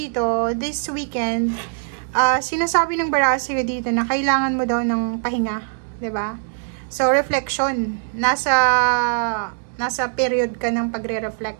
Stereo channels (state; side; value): silent; left; digital silence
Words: this weekend, sinasabi ng baraha sa'yo dito na kailangan mo daw ng pahinga, 'di ba? So, reflection. Nasa period ka ng pagre-reflect,